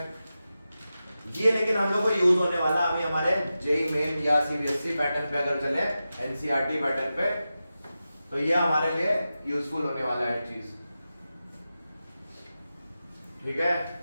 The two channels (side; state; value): both; inverted; correlation -0.92